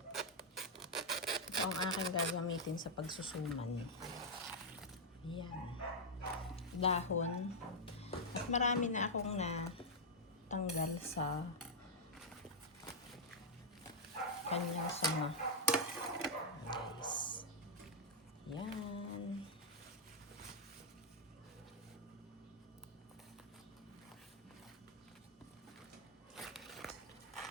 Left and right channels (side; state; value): both; normal; correlation -0.05